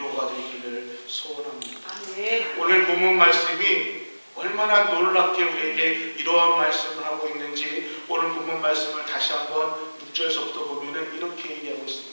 되기를 소원합니다. 오늘 본문 말씀이 얼마나 놀랍게 우리에게 이러한 말씀을 하고 있는지 오늘 본문 말씀을 다시 한번 6절서부터 보면 이렇게 얘기하고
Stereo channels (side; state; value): both; inverted; correlation -1.00